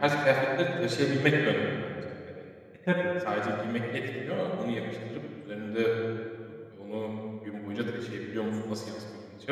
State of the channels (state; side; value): identical; both; correlation 1.00